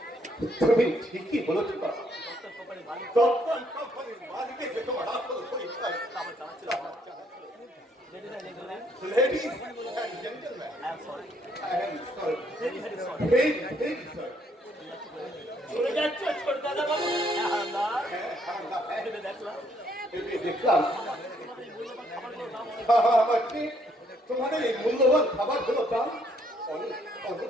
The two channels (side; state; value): both; normal; correlation 0.69